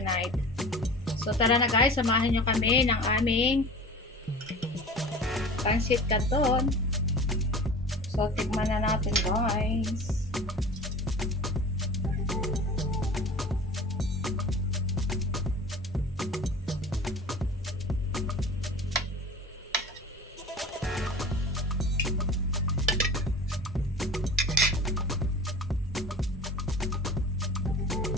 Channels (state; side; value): normal; both; correlation 0.38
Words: So tara na guys, samahan nyo kami ng aming pancit canton. So tikman na natin guys.